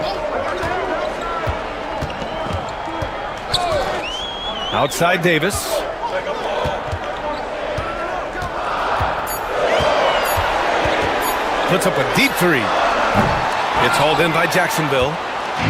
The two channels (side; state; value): both; identical; correlation 1.00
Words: Outside Davis. Puts up a deep three. It's hauled in by Jacksonville.